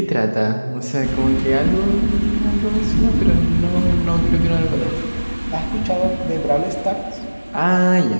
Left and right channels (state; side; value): inverted; both; correlation -1.00